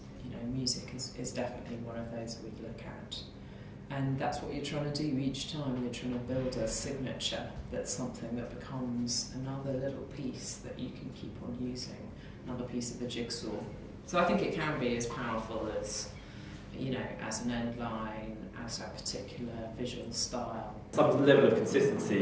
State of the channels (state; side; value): identical; both; correlation 1.00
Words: music is definitely one of those that we look at. And that's what you're trying to do each time. You're trying to build a signature that's something that becomes another little piece that you can keep on using, another piece of the jigsaw. So I think it can be as powerful as, as an end line, as a particular visual style. Some level of